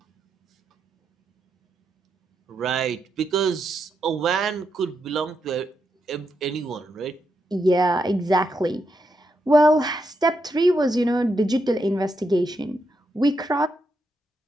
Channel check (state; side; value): normal; both; correlation 0.82